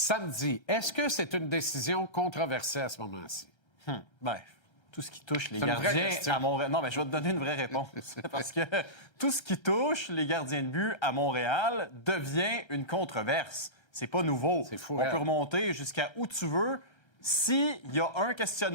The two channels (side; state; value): right; late; 1.6 ms